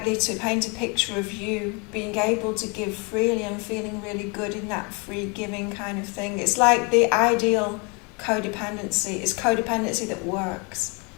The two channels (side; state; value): right; quieter; 31.4 dB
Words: to paint a picture of you being able to give freely and feeling really good in that free giving kind of thing. It's like the ideal codependency is codependency that works.